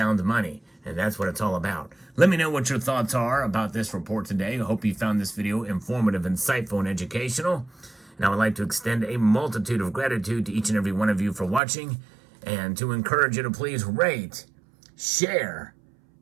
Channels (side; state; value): left; drops out; at 11.6 s